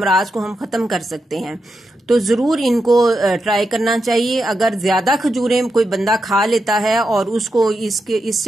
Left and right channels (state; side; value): normal; both; correlation 0.86